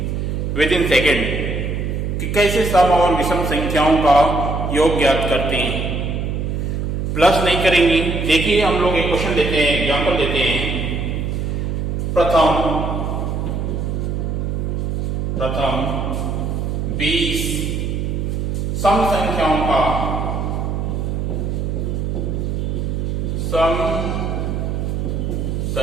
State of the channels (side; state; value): right; noise; hum, 1 dB below the sound